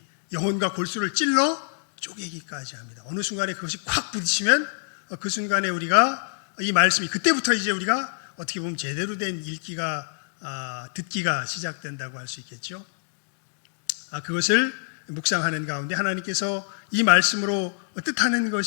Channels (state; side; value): silent; right; digital silence